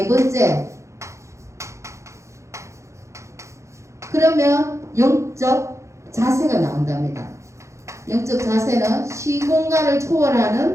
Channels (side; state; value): left; late; 0.14 ms